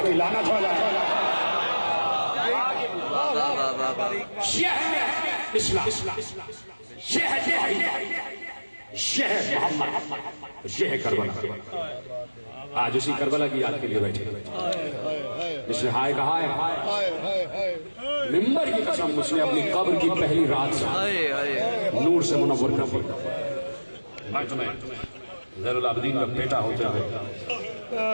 کی لعنت ہو جائے. یہ ہے اسلام, یہ ہے محمد, یہ ہے کربلا. آج اسی کربلا کی یاد کے لیے بیٹھے, جس نے ہائے کہا ہے ممبر کی قسم, اس نے اپنی قبر کی پہلی رات سے نور سے منور کر دیا. میں تمہیں زین العابدین کا بیٹا ہوتے ہوئے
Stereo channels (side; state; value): both; inverted; correlation -1.00